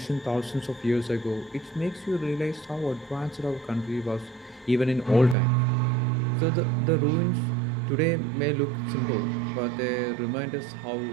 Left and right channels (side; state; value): left; drops out; at 5.4 s